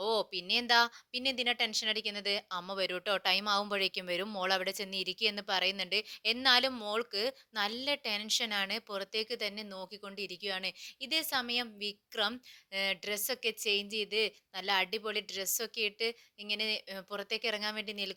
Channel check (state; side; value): identical; both; correlation 1.00